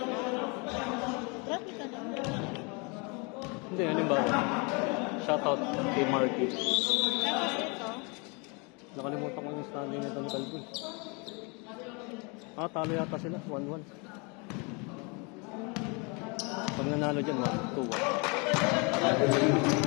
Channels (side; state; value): right; quieter; 31.4 dB